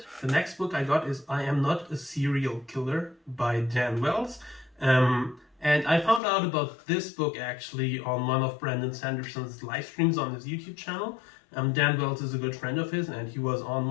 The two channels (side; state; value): right; drops out; at 6.2 s